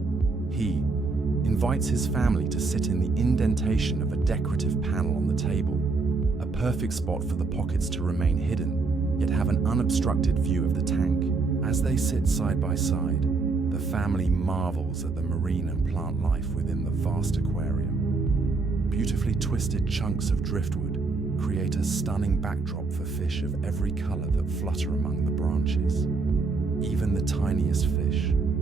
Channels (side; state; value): left; quieter; 4.0 dB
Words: He invites his family to sit in the indentation of a decorative panel on the table, a perfect spot for the pockets to remain hidden, yet have an unobstructed view of the tank. As they sit side by side, the family marvels at the marine and plant life within the vast aquarium. Beautifully twisted chunks of driftwood create a stunning backdrop for fish of every color that flutter among the branches. Even the tiniest fish